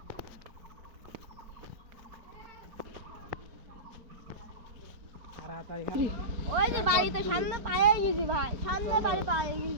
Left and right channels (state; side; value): late; left; 4.4 ms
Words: তাড়াতাড়ি। ওই যে বাড়িতে সামনে পায়ে গেছি ভাই, সামনে বাড়ি পায়ে